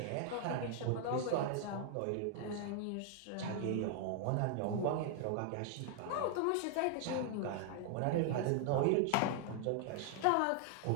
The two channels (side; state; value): both; different; correlation 0.00